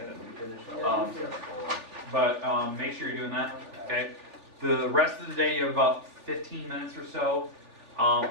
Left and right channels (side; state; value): left; late; 3.4 ms